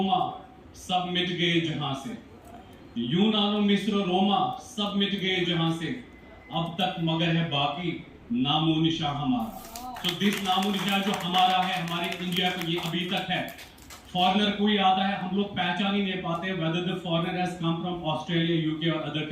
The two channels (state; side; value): identical; both; correlation 1.00